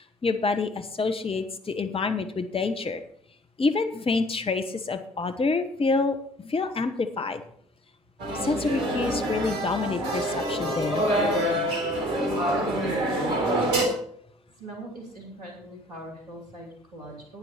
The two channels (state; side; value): normal; both; correlation 0.53